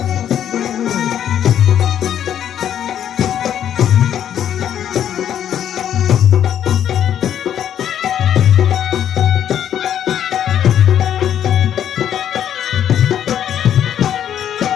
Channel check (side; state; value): right; quieter; 10.0 dB